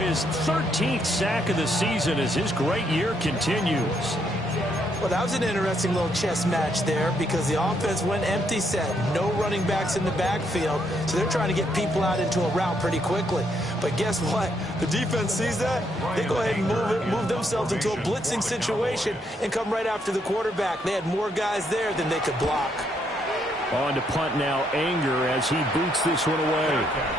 13th sack of the season as his great year continues. Well, that was an interesting little chess match there because the offense went empty set. No running backs in the backfield, so they're trying to get people out into a route pretty quickly. But guess what? The defense sees that. They go ahead and move themselves into a blitzing situation and come right after the quarterback. They had more guys there than they could block. On to punt now, Anger, as he boots this one away.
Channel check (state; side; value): normal; both; correlation 0.74